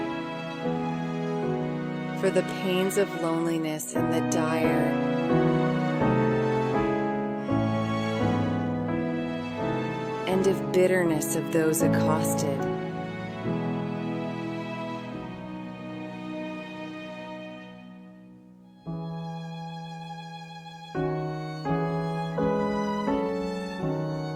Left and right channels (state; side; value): identical; both; correlation 1.00